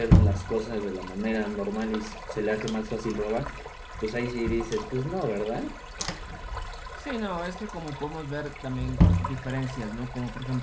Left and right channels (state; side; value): identical; both; correlation 1.00